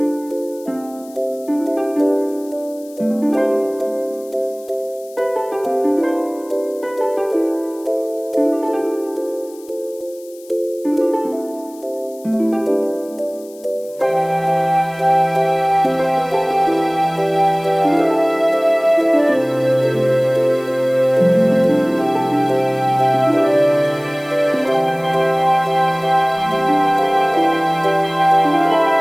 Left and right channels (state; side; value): noise; left; hiss, 24 dB below the sound